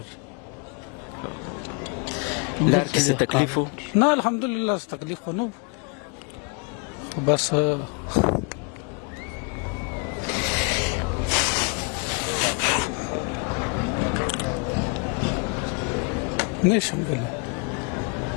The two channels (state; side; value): quieter; right; 34.7 dB